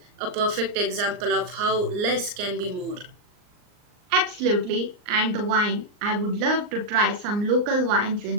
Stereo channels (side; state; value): left; late; 39 ms